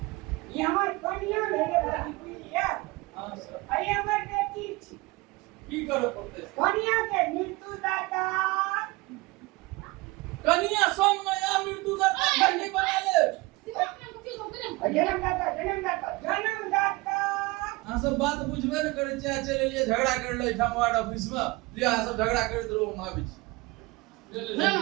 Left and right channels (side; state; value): left; quieter; 23.1 dB